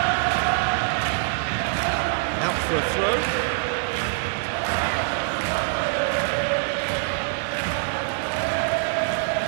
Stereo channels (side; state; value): left; silent; digital silence